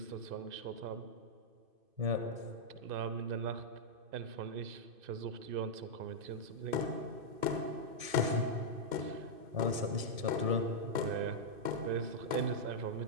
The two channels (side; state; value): left; late; 2.5 ms